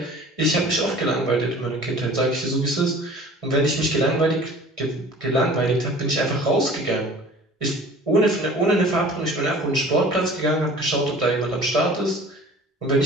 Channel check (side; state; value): both; normal; correlation 0.45